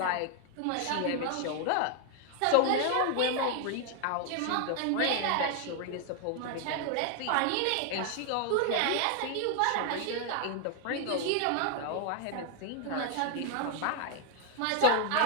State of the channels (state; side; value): different; both; correlation 0.00